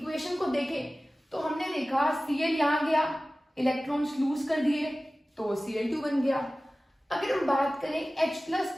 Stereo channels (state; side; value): normal; both; correlation 0.97